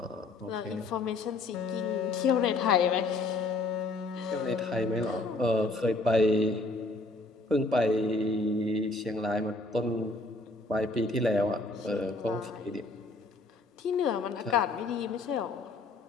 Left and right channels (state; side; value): quieter; right; 3.2 dB